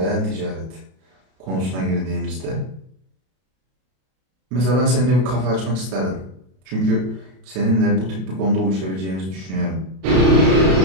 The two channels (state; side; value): late; left; 32 ms